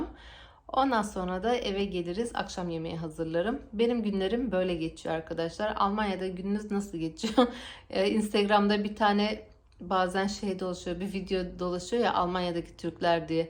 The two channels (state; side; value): identical; both; correlation 1.00